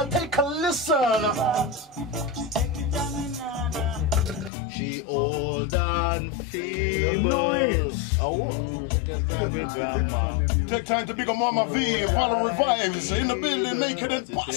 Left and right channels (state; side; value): drops out; right; at 4.5 s